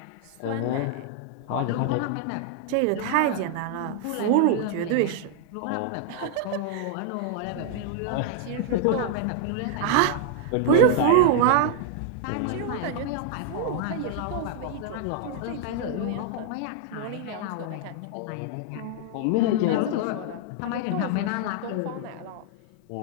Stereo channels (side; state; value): both; different; correlation 0.00